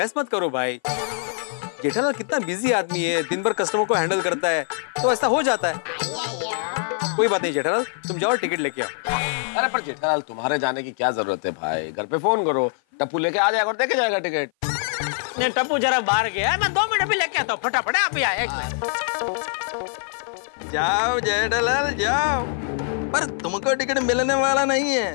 मत करो भाई। जेठालाल कितना बिजी आदमी है, दिन भर कस्टमर को हैंडल करता है, तो ऐसा हो जाता है। कोई बात नहीं जेठालाल, तुम जाओ टिकट लेके आओ। अरे पर जेठालाल, तुम्हारे जाने की क्या जरूरत है भाई, घर पे फोन करो, टप्पू लेके आ जाएगा और देके जाएगा टिकट। नहीं टप्पू जरा बाहर गया है, मैं 2 मिनट भी लेके आता हूँ, फटाफट आप ही आए। एक मिनट। जाओ जेठालाल जाओ, पर तुमको टिकट मिलने वाला नहीं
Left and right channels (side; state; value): right; silent; 56 dB below the other